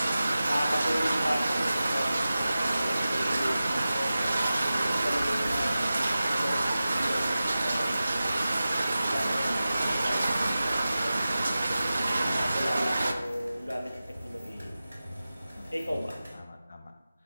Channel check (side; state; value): both; inverted; correlation -0.95